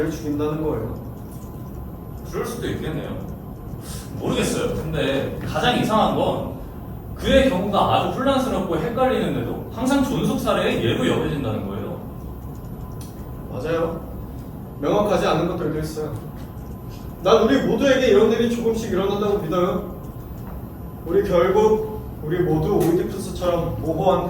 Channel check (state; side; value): identical; both; correlation 1.00